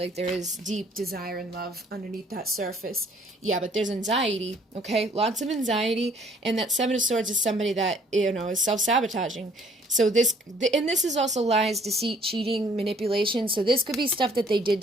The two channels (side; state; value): both; normal; correlation 0.59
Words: there is deep desire and love underneath that surface. Yeah, but there's anxiety, okay? Lots of anxiety. And that Seven of Swords is somebody that, you know, is self-sabotaging. So this is also lies, deceit, cheating, manipulation. So this could be stuff that they did